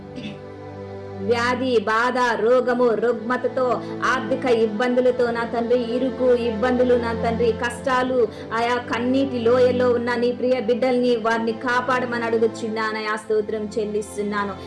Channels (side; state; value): both; identical; correlation 1.00